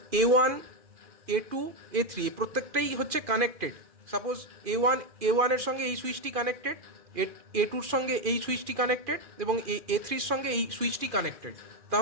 A1 A2 A3 প্রত্যেকটাই হচ্ছে কানেক্টেড, সাপোজ A1 এর সঙ্গে এই সুইচটি কানেক্টেড, A2 এর সঙ্গে এই সুইচটি কানেক্টেড এবং A3 এর সঙ্গে এই সুইচটি কানেক্টেড,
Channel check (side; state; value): left; late; 2.4 ms